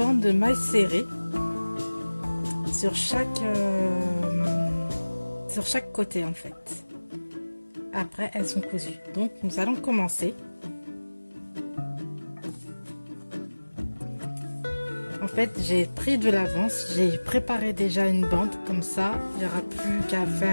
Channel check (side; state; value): both; inverted; correlation -1.00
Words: de mailles serrées sur chaque côté en fait. Après elles sont cousues. Donc nous allons commencer. En fait j'ai pris de l'avance, j'ai préparé déjà une bande, comme ça il n'y aura plus qu'à